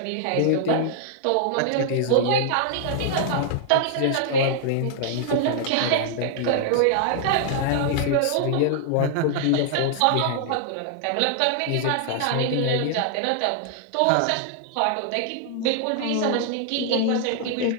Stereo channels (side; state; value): both; different; correlation -0.01